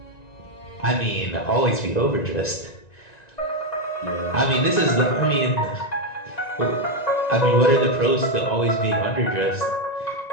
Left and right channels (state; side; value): late; right; 1.9 ms